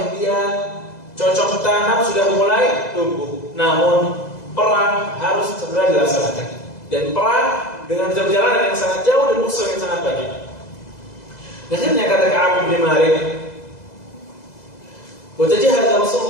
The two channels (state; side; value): late; right; 2.0 ms